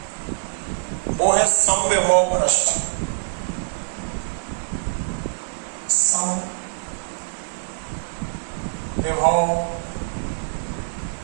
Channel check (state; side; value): silent; left; digital silence